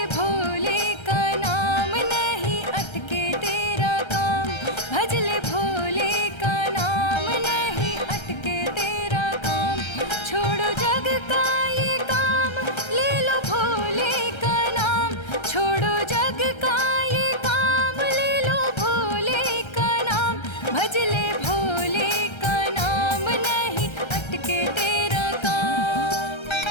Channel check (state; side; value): late; right; 1.3 ms